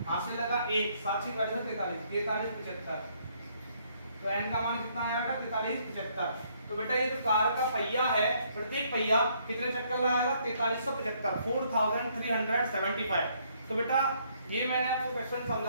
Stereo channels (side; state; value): both; inverted; correlation -0.68